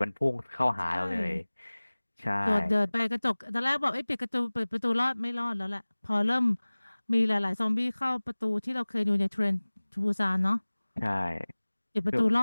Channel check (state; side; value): inverted; both; correlation -1.00